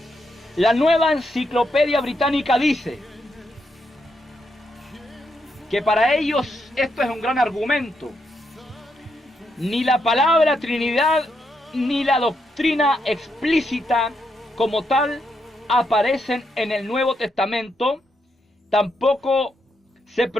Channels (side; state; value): both; normal; correlation 0.80